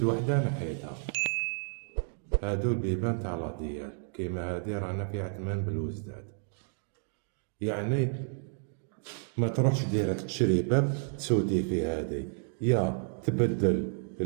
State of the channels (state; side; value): silent; left; 57 dB below the other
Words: وحدة نحيتها. هادو البيبان تاع لاديال كيما هادي رانا في عتمان بالوزداد، يعني ما تروحش ديريكت تشري باب تسودي فيه هادي، يا تبدل